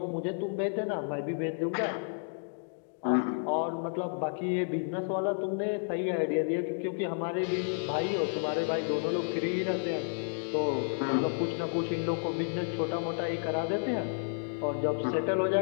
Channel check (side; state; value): right; silent; digital silence